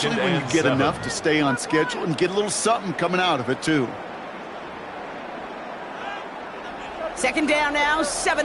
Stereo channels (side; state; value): both; identical; correlation 1.00